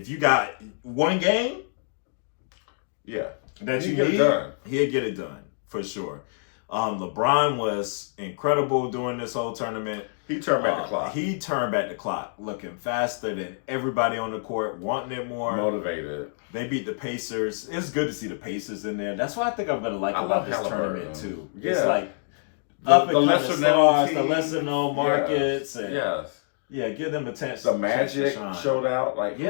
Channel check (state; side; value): silent; right; digital silence